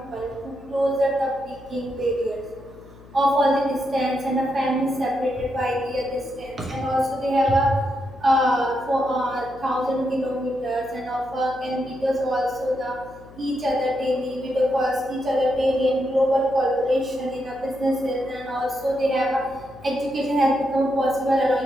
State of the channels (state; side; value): noise; left; hum, 21 dB below the sound